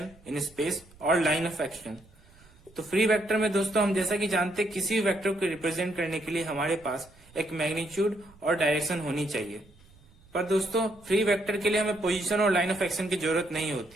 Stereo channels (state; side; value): noise; right; rumble, 26 dB below the sound